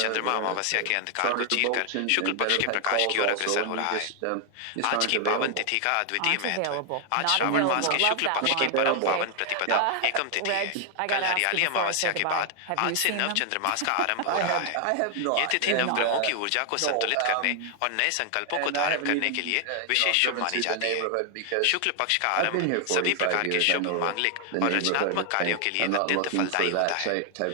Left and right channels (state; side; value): different; both; correlation 0.00